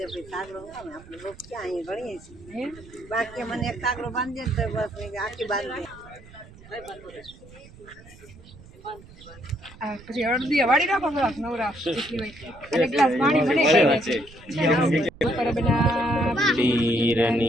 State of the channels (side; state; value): right; noise; rumble, 21 dB below the sound